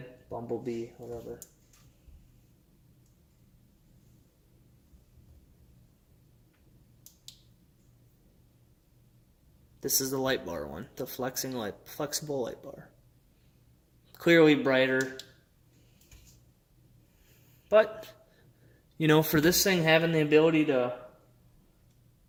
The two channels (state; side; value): identical; both; correlation 1.00